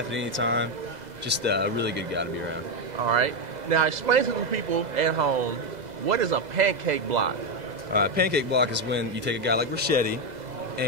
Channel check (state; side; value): late; left; 2.0 ms